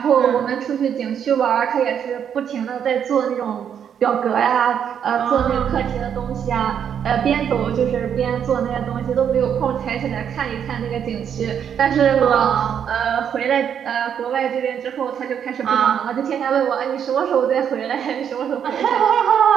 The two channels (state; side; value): quieter; left; 8.4 dB